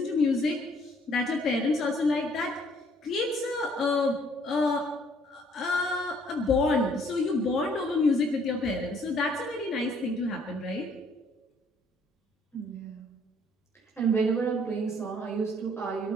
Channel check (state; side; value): normal; both; correlation 0.62